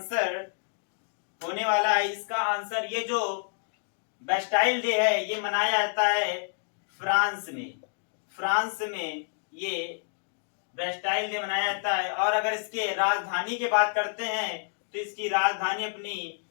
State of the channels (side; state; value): right; silent; digital silence